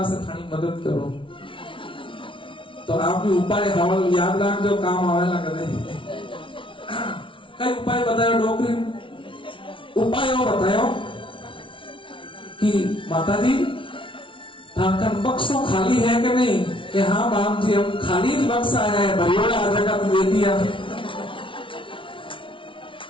से थानी मदद करो। तो आप भी उपाय हवल याद रख जो काम आवेला कदे। कई उपाय बतायो डोकरी उपाय बतायो कि माता जी ठाकर बक्सों खाली है कि नहीं? कि हाँ बाप जी हम खाली बक्सा है, भरियोड़ा आ जगह तो दे दिया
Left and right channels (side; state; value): right; late; 0.25 ms